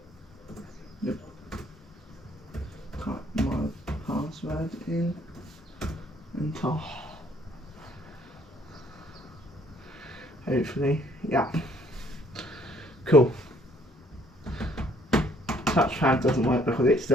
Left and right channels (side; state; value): both; normal; correlation 0.62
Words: Yep. Type my password in and hopefully, yeah. Cool. Touchpad doesn't work because it's